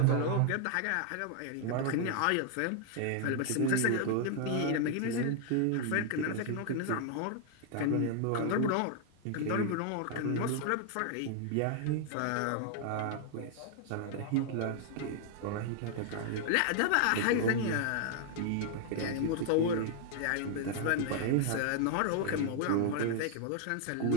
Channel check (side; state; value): both; different; correlation 0.00